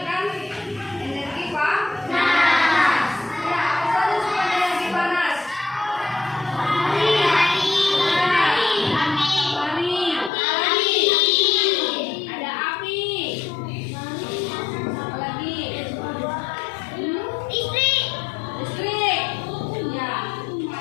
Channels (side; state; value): right; drops out; at 10.3 s